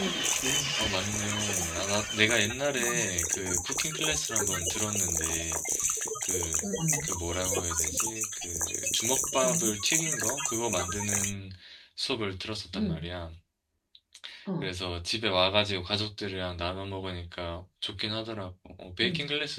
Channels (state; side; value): identical; both; correlation 1.00